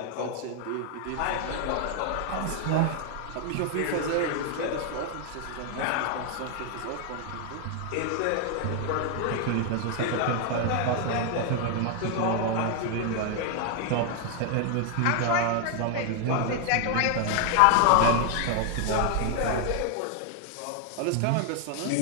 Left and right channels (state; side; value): different; both; correlation 0.00